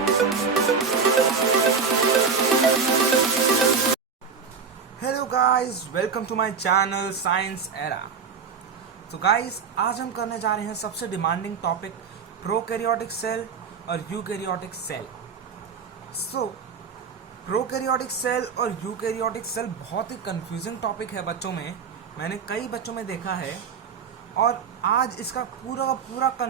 guys, welcome to my channel science era. तो guys, आज हम करने जा रहे हैं सबसे डिमांडिंग टॉपिक प्रोकैरियोटिक सेल और यूकैरियोटिक सेल। प्रोकैरियोटिक सेल और यूकैरियोटिक सेल बहुत ही कंफ्यूजिंग टॉपिक है बच्चों में। मैंने कई बच्चों में देखा है और आज इसका पूरा पूरा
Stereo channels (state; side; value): quieter; left; 5.8 dB